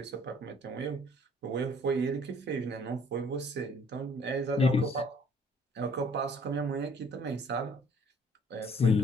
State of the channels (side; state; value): both; normal; correlation 0.58